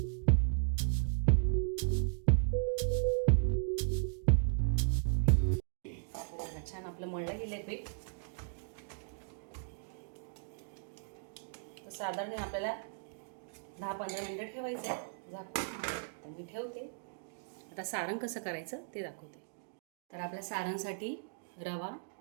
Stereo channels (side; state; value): left; silent; digital silence